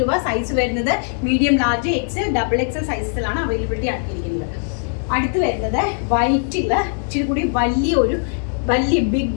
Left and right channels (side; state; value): right; silent; 58 dB below the other